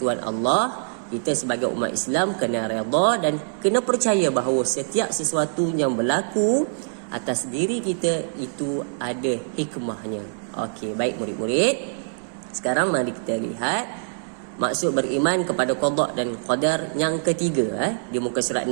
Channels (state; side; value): silent; left; digital silence